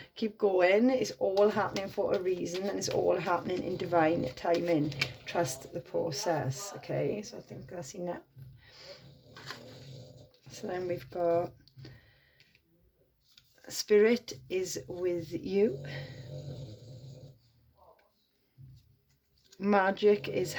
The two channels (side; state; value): both; identical; correlation 1.00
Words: keep going. It's all happening for a reason, and it's all happening in divine timing. Trust the process, okay? So I think that's enough. So then we've got Spirit is with you. Magic is